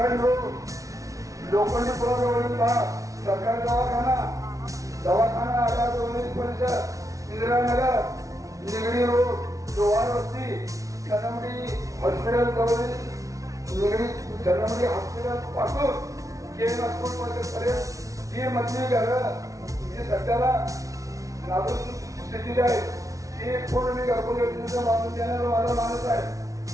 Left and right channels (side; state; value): left; late; 0.16 ms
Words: रोड, लोखंडी पुलाजवळील भाग, सरकारी दवाखाना आधार परिसर, इंदिरानगर, निगडी रोड, लोहार वस्ती, सनमडी हॉस्पिटल जवळील निगडी सनमडी हॉस्पिटल पासून केम पर्यंत जी मधली घरं जी सध्याला नाजूक स्थितीत आहे ती पूर्ण मी घरकुल योजनेचा बांधून देण्याचा माझा मानस आहे.